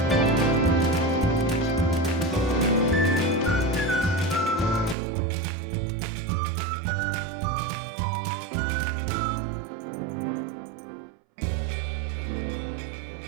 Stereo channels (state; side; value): drops out; left; at 5.0 s